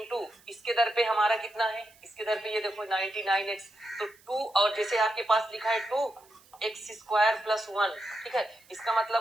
इसके दर पे हमारा कितना है, इसके दर पे ये देखो 99x, तो 2 और जैसे आपके पास लिखा है 2x स्क्वायर प्लस 1, ठीक है, इसका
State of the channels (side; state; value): right; noise; hiss, 28 dB below the sound